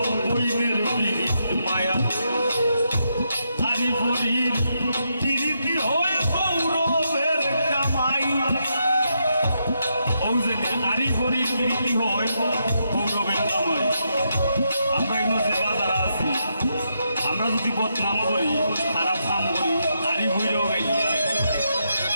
বইনের ফিরিত মায়া আরি ফরির ফিরিতি হয় গৌরবের কামাই ও যে আরি ফরির ফিরিতি হয় গৌরবের কামাই। আমরা এগুলো যে বাজার আছি আমরা যদি বদনাম করি খারাপ কাম করি আরি ফইরেও গাইয়া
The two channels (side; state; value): both; inverted; correlation -0.81